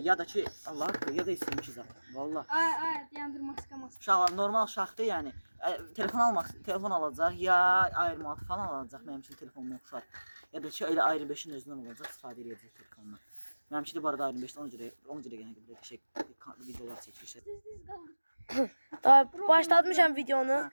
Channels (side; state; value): both; inverted; correlation -1.00